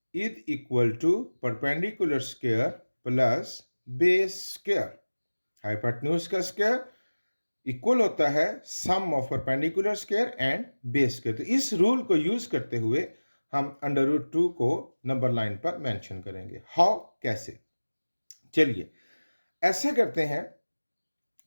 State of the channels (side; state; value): both; inverted; correlation -1.00